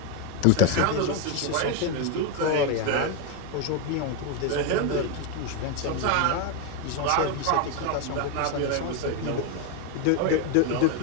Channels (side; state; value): both; different; correlation 0.02